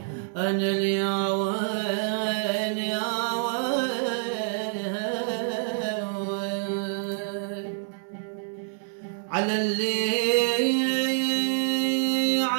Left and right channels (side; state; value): left; silent; digital silence